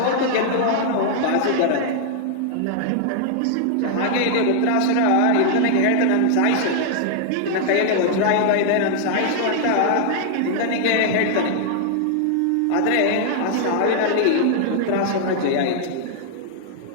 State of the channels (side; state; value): both; different; correlation 0.00